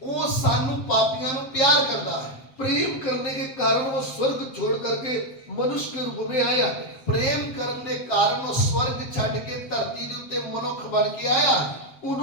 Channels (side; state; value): right; late; 7.7 ms